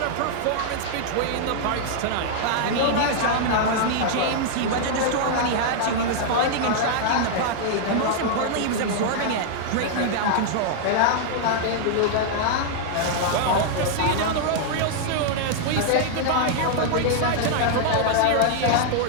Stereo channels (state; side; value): different; both; correlation -0.01